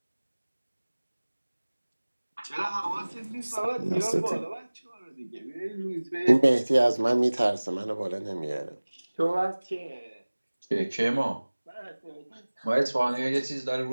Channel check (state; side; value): inverted; both; correlation -1.00